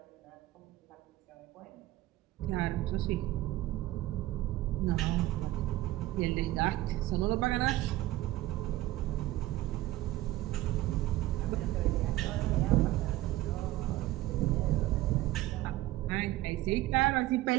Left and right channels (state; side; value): quieter; left; 16.5 dB